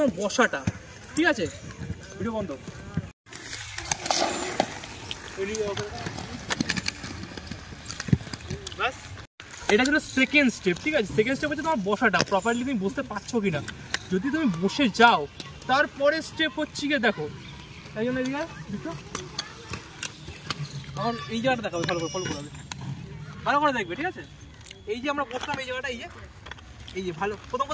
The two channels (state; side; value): identical; both; correlation 1.00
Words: বসাটা, ঠিক আছে। ভিডিও বন্ধ। এটা ছিল সেকেন্ড স্টেপ, ঠিক আছে। সেকেন্ড স্টেপ হচ্ছে তোমার বসাটা, প্রপারলি তুমি বসতে পারছো কিনা। যদি তুমি বসে যাও, তারপরে স্টেপ হচ্ছে গিয়ে দেখো, তাই জন্য এদিকে আমার এই জায়গাটা দেখাবে, ভালো করে ফলো করবে, ভালো করে দেখবে, ঠিক আছে। এই যে আমরা বসলাম এই জায়গাটা, এই যে ভালো প্রথম